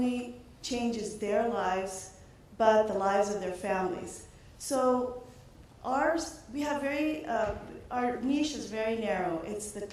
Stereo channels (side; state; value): both; identical; correlation 1.00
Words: changes their lives, but the lives of their families. So we have our niche is very narrow. It's the